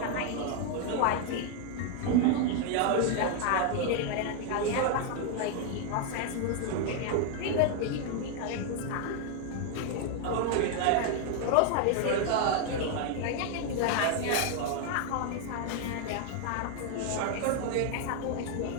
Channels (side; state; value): both; different; correlation 0.00